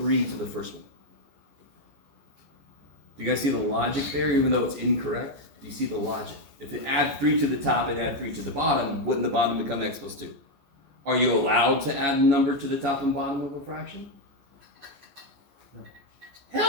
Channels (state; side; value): late; left; 14 ms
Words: to the first one. Do you guys see the logic there, even though it's incorrect? Do you see the logic? If it add 3 to the top and add 3 to the bottom, wouldn't the bottom become x plus 2? Are you allowed to add a number to the top and bottom of a fraction? No.